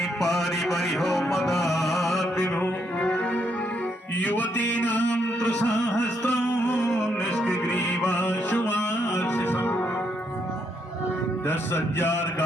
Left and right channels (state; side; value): normal; both; correlation 0.75